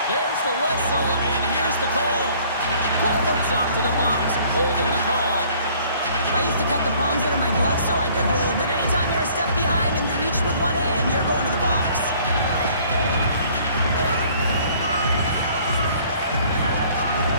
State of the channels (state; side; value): inverted; both; correlation -0.57